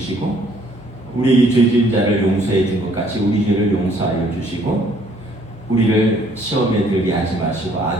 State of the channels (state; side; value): normal; both; correlation 0.62